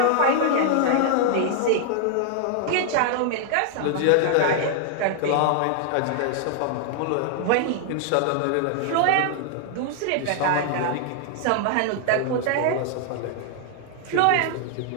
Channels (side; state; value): both; different; correlation 0.00